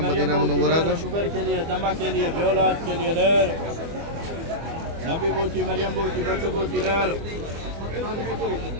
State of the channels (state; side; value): late; left; 24 ms